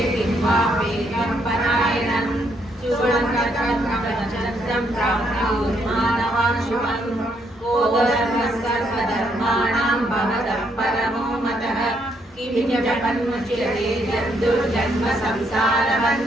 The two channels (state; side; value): normal; both; correlation 0.74